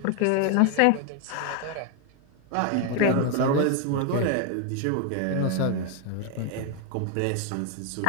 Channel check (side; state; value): both; different; correlation 0.01